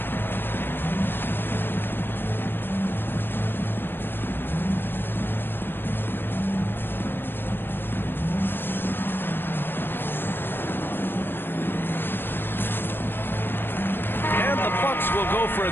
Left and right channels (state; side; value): late; right; 0.10 ms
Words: Will go for a